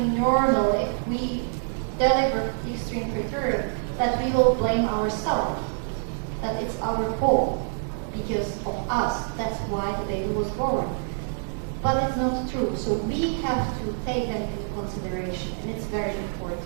normal if we deliver extreme preterm, that we will blame ourselves, that it's our fault. Because of us, that's why the baby was born. But it's not true, so we have to take them into consideration, and it's very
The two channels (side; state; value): left; silent; digital silence